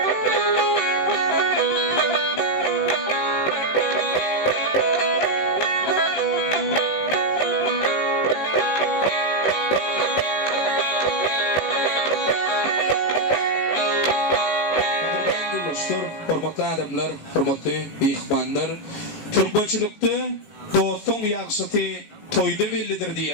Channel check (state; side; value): late; right; 18 ms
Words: Hormatly adamlar, hormatly mehmanlar, türkmençilikde dostun ýagşyty toýda bellidir